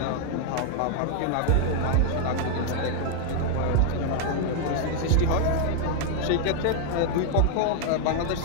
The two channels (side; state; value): both; different; correlation 0.00